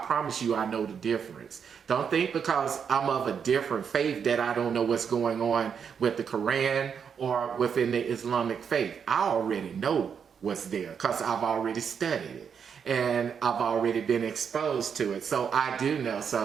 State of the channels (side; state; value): left; quieter; 7.0 dB